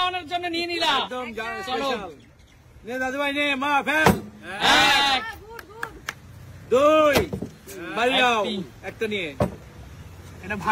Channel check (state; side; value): identical; both; correlation 1.00